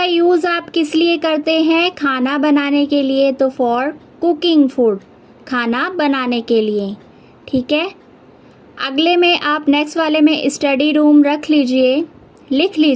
यूज़ आप किस लिए करते हैं? खाना बनाने के लिए। तो फॉर कुकिंग फूड, खाना बनाने के लिए। ठीक है, अगले में आप नेक्स्ट वाले में स्टडी रूम रख लीजिए, लिख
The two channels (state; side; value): identical; both; correlation 1.00